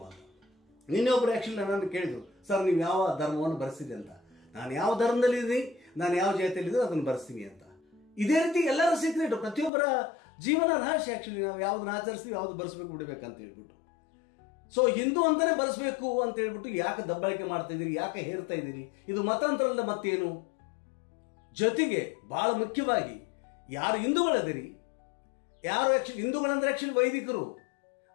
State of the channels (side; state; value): right; drops out; at 9.7 s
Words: ಅಂತ ನಿನ್ನೆ ಒಬ್ಬರು ಆ್ಯಕ್ಚುಲಿ ನನ್ನನ್ನು ಕೇಳಿದ್ರು, ಸರ್ ನೀವು ಯಾವ ಧರ್ಮವನ್ನು ಬರೆಸಿದೆ ಅಂತ. ನಾನು ಯಾವ ಧರ್ಮದಲ್ಲಿದ್ದೀನಿ, ನಾನು ಯಾವ ಜಾತಿಯಲ್ಲಿದ್ದರೂ ಅದನ್ನು ಬರೆಸ್ತೀನಿ ಅಂತ. ಇದೇ ರೀತಿ ಎಲ್ಲರ ಸೀಕ್ರೆಟ್, ಪ್ರತಿಯೊಬ್ಬರ ಜೀವನ ರಹಸ್ಯ ಆ್ಯಕ್ಚುಲಿ. ನಾವು ಯಾವ್ದನ್ನ ಆಚರಿಸ್ತೀವಿ, ಯಾವ್ದು ಬರೆಸ್ಬೇಕು ಬಿಡಬೇಕಂತ ಹೇಳ್ಬಿಟ್ಟು. ಸೊ ಹಿಂದೂ ಅಂತಾನೆ ಬರೆಸ್ಬೇಕು ಅಂತ ಹೇಳ್ಬಿಟ್ಟು ಯಾಕೆ ದಬ್ಬಾಳಿಕೆ ಮಾಡ್ತಾ ಇದ್ದೀರಿ, ಯಾಕೆ ಹೇರ್ತಾ ಇದ್ದೀರಿ? ಇದು ಮತಾಂತರಲ್ಲ ಮತ್ತೇನು? ಜೊತೆಗೆ ಬಹಳ ಮುಖ್ಯವಾಗಿ ಯಾರು ಹಿಂದೂಗಳದಿರಿ, ಯಾರು ಆ್ಯಕ್ಚುಲಿ ಹಿಂದೂಗಳಂದ್ರೆ ಆ್ಯಕ್ಚುಲಿ